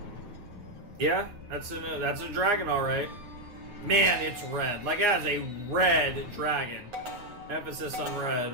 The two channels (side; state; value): left; late; 9.1 ms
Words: Yeah, that's a dragon, alright. Man, it's red. Like, it has a red dragon. Emphasis on